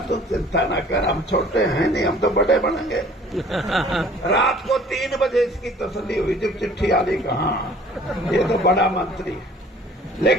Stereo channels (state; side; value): normal; both; correlation 0.52